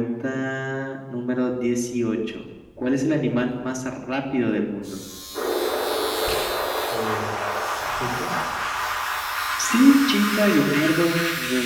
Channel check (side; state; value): both; identical; correlation 1.00